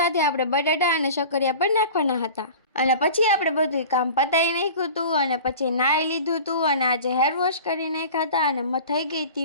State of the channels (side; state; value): both; inverted; correlation -0.38